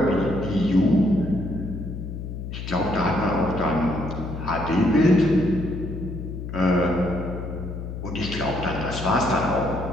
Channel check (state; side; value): noise; left; hum, 7 dB below the sound